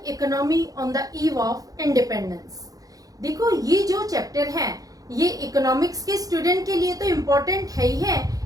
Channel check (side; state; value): left; late; 0.17 ms